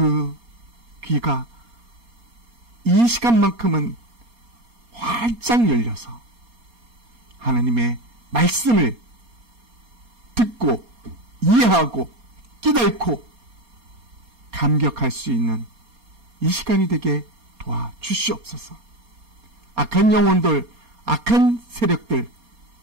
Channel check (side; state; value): left; late; 4.3 ms